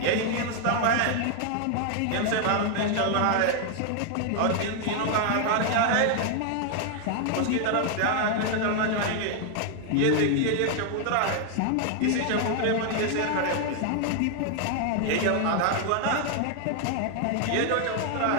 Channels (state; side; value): different; both; correlation 0.00